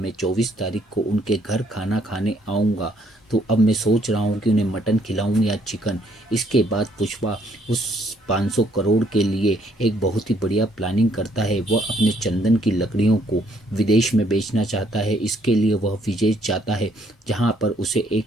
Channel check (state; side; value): normal; both; correlation 0.68